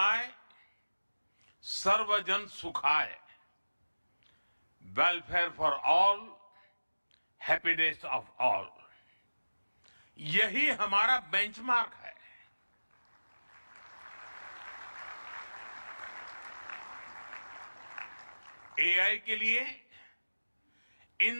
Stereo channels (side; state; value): both; inverted; correlation -1.00